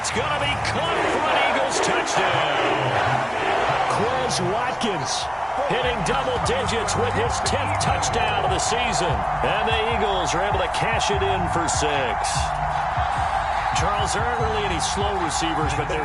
going to be caught for an Eagles touchdown. Quez Watkins hitting double digits with his 10th touchdown of the season. And the Eagles are able to cash it in for 6. Charles, there aren't really any slow receivers, but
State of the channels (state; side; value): identical; both; correlation 1.00